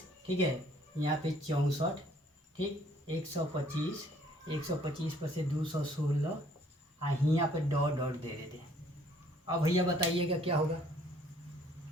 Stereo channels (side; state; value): both; normal; correlation 0.60